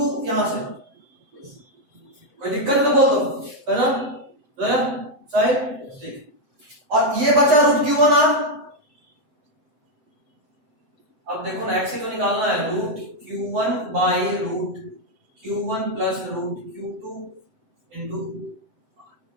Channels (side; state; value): left; late; 7.8 ms